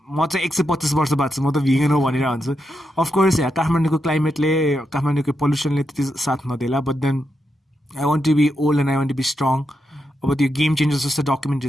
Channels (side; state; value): both; normal; correlation 0.84